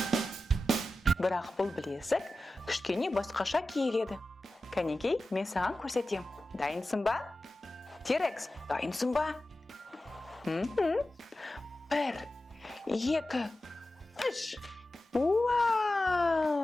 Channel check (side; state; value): both; normal; correlation 0.94